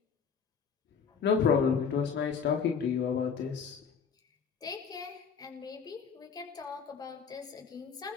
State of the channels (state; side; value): quieter; right; 6.3 dB